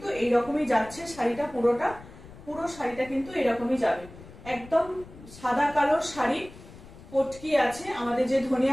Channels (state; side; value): noise; left; rumble, 18 dB below the sound